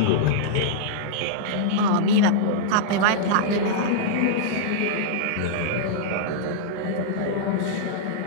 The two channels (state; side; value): different; both; correlation -0.02